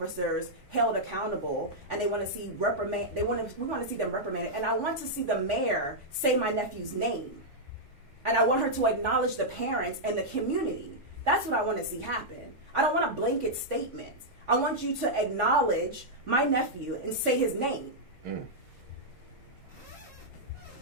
held accountable, and they want to see we want to see them reprimanded. And I want to see the mayor say my nephew's name. And I want her to acknowledge the parents and the community. That's what I want to see happen. I don't want a blanket statement. I want you to acknowledge my nephew and say his name. Mm.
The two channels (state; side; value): normal; both; correlation -0.06